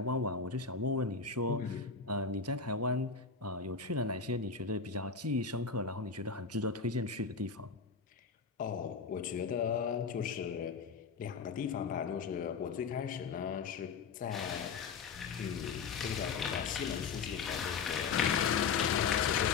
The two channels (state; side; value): quieter; right; 5.4 dB